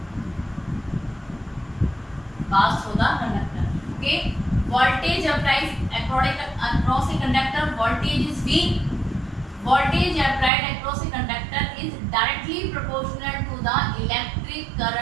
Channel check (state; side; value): drops out; left; at 10.5 s